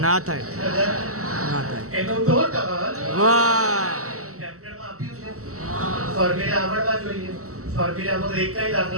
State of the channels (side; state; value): left; late; 0.64 ms